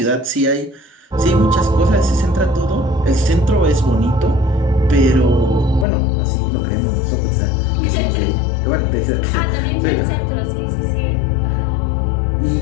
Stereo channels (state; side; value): drops out; right; at 5.9 s